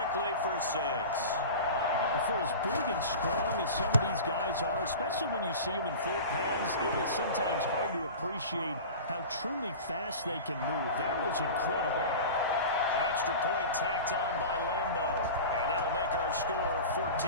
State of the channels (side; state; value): both; inverted; correlation -0.33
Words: for 6. For as big and strong as some of these guys are, especially when you see them in full pads, it is sometimes hard to appreciate how truly fast they can move. That was incredible. Extra point tacked on by Lambeau. And that'll make our score